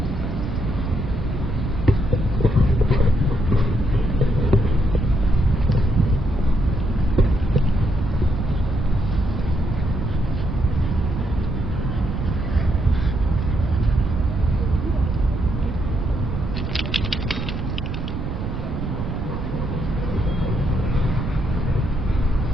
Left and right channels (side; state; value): right; noise; rumble, 4 dB below the sound